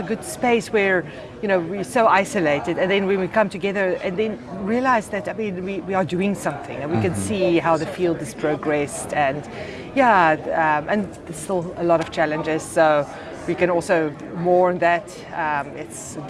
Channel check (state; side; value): identical; both; correlation 1.00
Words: a good space where, we're so isolated, and then when we come together and then realize that, we are doing something, and we can see how the field has progressed, and and there's still a lot of challenges, so we can also mourn that. It's a